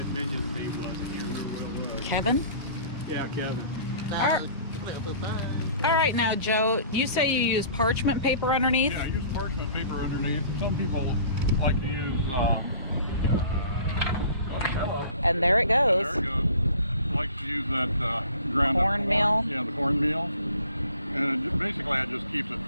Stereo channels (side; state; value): both; inverted; correlation -0.48